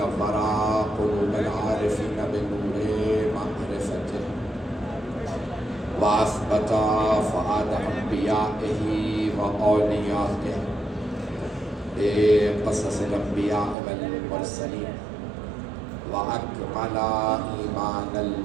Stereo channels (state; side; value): drops out; left; at 13.8 s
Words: قلوب العارفين بنور معرفته وأثبت فؤاد أنبيائه وأوليائه بقصص الأنبياء والمرسلين وأكمل إيمان